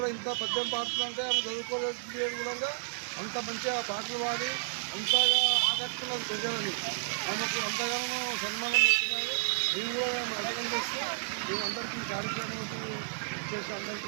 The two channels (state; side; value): silent; left; digital silence